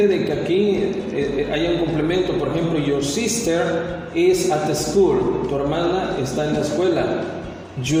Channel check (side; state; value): both; identical; correlation 1.00